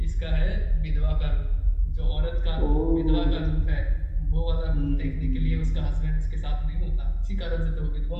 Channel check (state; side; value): identical; both; correlation 1.00